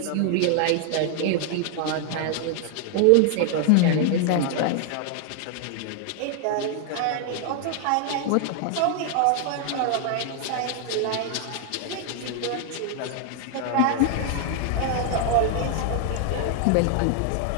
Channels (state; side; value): different; both; correlation 0.00